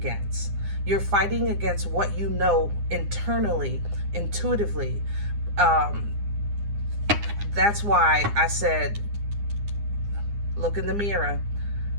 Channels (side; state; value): left; late; 9.8 ms